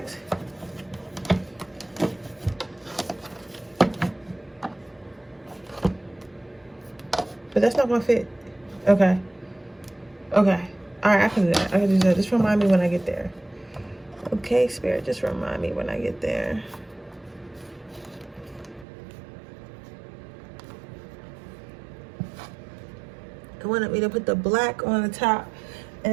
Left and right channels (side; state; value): left; drops out; at 18.9 s